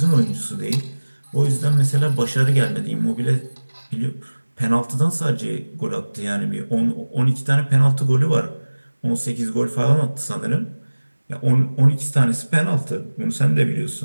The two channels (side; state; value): both; inverted; correlation -1.00